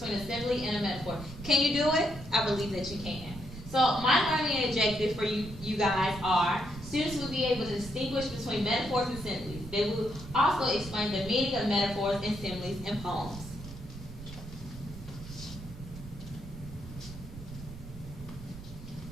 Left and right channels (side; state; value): right; noise; rumble, 13 dB below the sound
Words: a simile and a metaphor. Can you do it? I believe that you can. So my learning objective for you guys are students will be able to distinguish between metaphors and similes. They will also explain the meaning of metaphors and similes in poems.